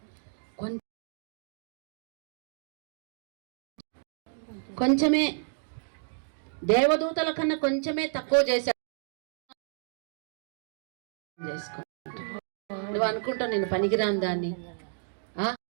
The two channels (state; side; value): silent; left; digital silence